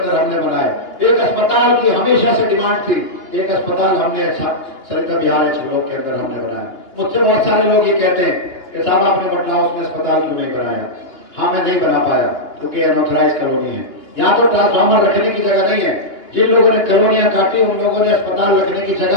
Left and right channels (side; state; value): right; late; 2.8 ms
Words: हमने बनाए। एक अस्पताल की हमेशा से डिमांड थी, एक अस्पताल हमने सरिता बिहार ब्लॉक के अंदर हमने बनाया। मुझसे बहुत सारे लोग ये कहते हैं कि साहब आपने बटला हाउस में अस्पताल क्यों नहीं बनाया? हाँ, मैं नहीं बना पाया क्योंकि अनऑथराइज कॉलोनी है, यहाँ तो ट्रांसफार्मर रखने की जगह नहीं है। जिन लोगों ने कॉलोनियां काटी, उन लोगों ने अस्पताल रखने की